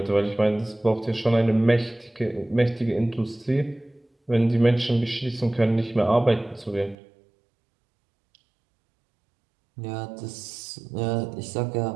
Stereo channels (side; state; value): left; drops out; at 7.0 s